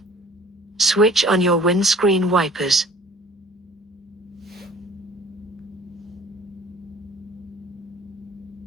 Switch on your windscreen wipers.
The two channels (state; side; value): normal; both; correlation 0.51